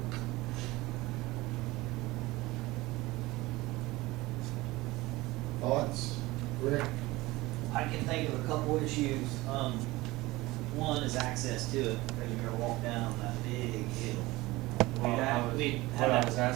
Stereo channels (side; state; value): left; quieter; 20.0 dB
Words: Thoughts? Rick? I can think of a couple issues. One is access to it, because you're gonna walk down that big hill. Well, We what I had was that.